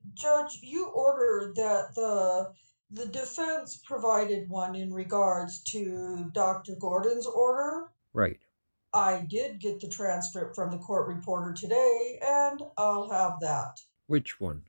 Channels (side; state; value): both; inverted; correlation -1.00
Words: Judge, you ordered that the defense provided one in regards to Dr. Gordon's order. right? I did get the transcript from the court reporter today, and I'll have that. Which one?